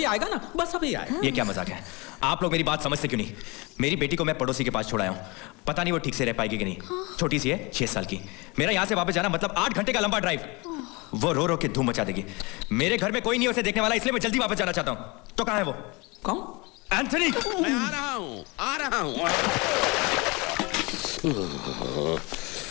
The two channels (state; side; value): quieter; right; 26.6 dB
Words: आएगा ना, बस अभी आएगा। ये क्या मजाक है? आप लोग मेरी बात समझते क्यों नहीं? मेरी बेटी को मैं पड़ोसी के पास छोड़ाया हूँ, पता नहीं वो ठीक से रह पाएगी कि नहीं। छोटी सी है, 6 साल की। मेरा यहाँ से वापस जाना मतलब 8 घंटे का लंबा ड्राइव। वो रो रो के धूम मचा देगी। मेरे घर में कोई नहीं उसे देखने वाला, इसलिए मैं जल्दी वापस जाना चाहता हूँ। तो कहाँ है वो? कौन? एंथनी! मैं आ रहा हूँ।